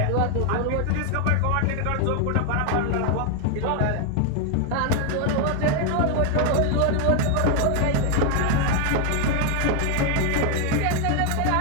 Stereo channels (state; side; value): different; both; correlation 0.01